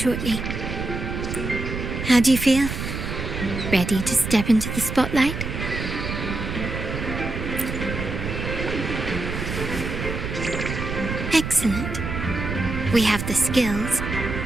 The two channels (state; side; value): noise; right; rumble, 5 dB below the sound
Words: How do you feel? Ready to step into the spotlight? Excellent. We have the skills.